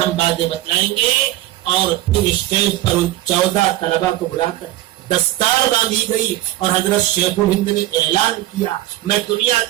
باتیں بتلائیں گے. اور پھر اسٹیج پر ان 14 طلبا کو بلا کر دستار باندھی گئی اور حضرت شیخ الہند نے اعلان کیا میں دنیا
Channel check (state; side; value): quieter; left; 15.4 dB